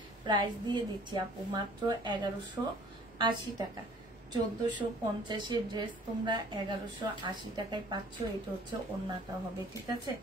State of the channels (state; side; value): normal; both; correlation 0.53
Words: প্রাইস দিয়ে দিচ্ছি আপু মাত্র 1180 টাকা। 1450-এর ড্রেস তোমরা 1180 টাকায় পাচ্ছ। এটা হচ্ছে ওড়নাটা হবে, ঠিক আছে?